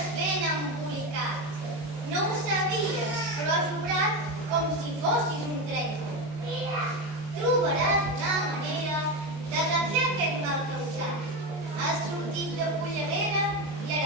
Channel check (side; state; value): left; late; 23 ms